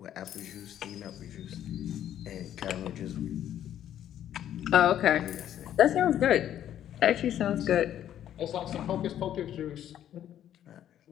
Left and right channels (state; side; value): quieter; right; 11.0 dB